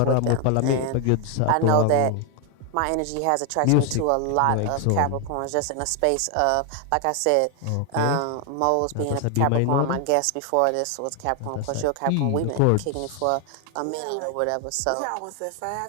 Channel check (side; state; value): both; different; correlation 0.00